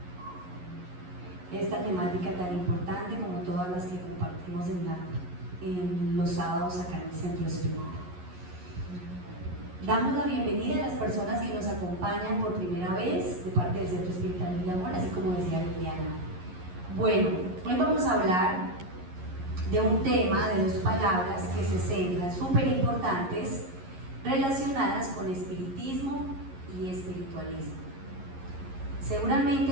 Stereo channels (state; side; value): late; left; 11 ms